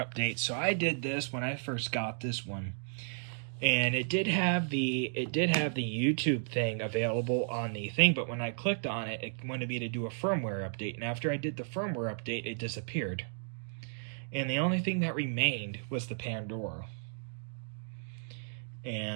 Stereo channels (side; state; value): left; silent; digital silence